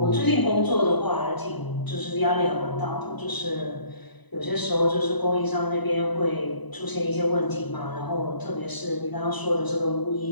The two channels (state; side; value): late; right; 1.0 ms